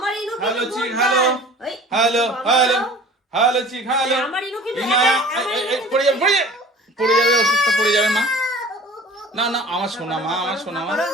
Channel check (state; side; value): normal; both; correlation 0.44